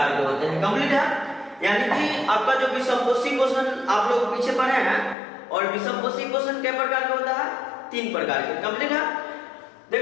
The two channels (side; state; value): right; drops out; at 5.2 s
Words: के होते हैं। कंप्लीट है, यानी कि आपका जो विषमपोषी पोषण आप लोग पीछे पढ़े हैं, और विषमपोषी पोषण कितने प्रकार का होता है? 3 प्रकार के। कंप्लीट है,